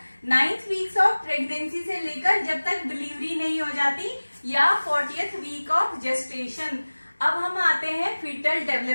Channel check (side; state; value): both; inverted; correlation -1.00